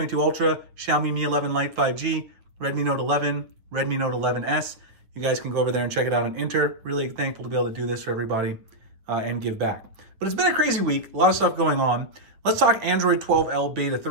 Ultra, Xiaomi Mi 11 Lite 5G, Redmi Note 11, Redmi Note 11S. You guys can go over there and check it out and enter. Really thankful to be able to do this for everybody and give back. But it's been a crazy week, a lot of stuff going on. Let's talk Android 12L Beta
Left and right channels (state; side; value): late; left; 9.2 ms